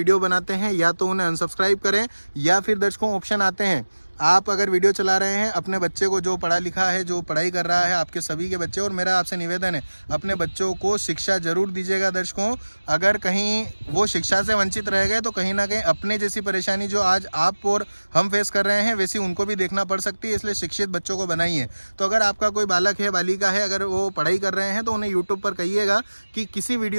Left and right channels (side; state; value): both; inverted; correlation -1.00